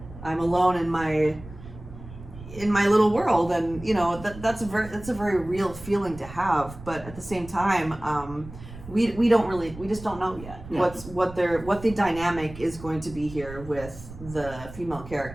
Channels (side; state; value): right; noise; rumble, 15 dB below the sound